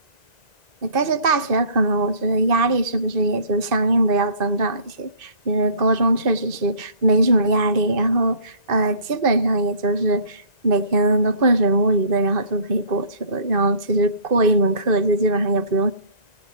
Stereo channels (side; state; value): left; late; 1.9 ms